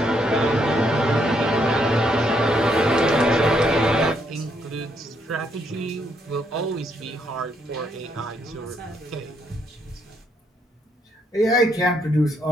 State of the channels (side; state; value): both; normal; correlation 0.74